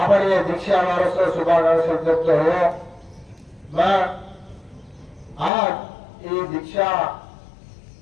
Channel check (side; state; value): right; drops out; at 5.5 s